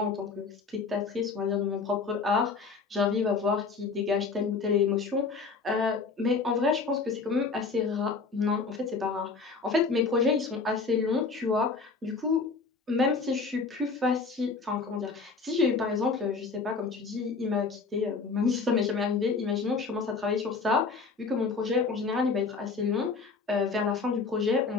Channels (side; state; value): right; quieter; 4.6 dB